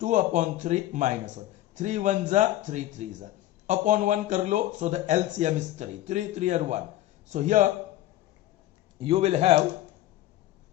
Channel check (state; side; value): quieter; right; 14.5 dB